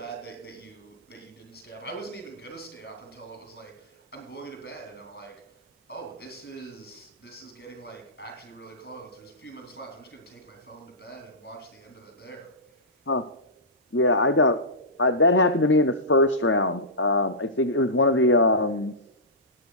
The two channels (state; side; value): normal; both; correlation -0.19